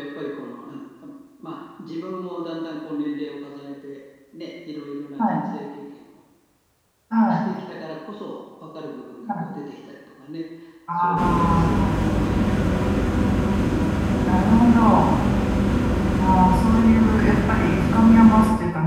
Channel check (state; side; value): identical; both; correlation 1.00